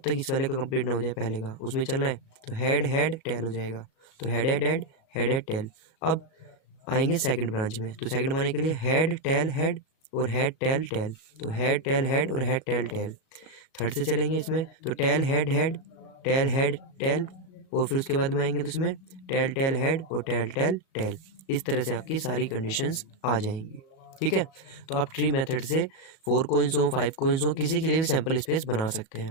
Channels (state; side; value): late; right; 37 ms